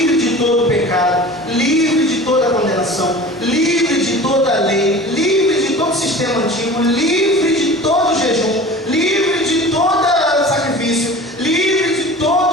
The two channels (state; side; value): normal; both; correlation 0.39